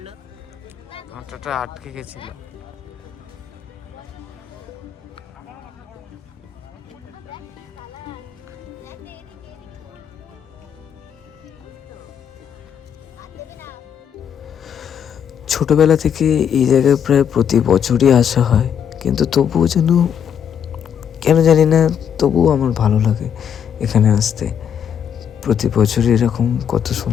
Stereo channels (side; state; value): right; quieter; 8.3 dB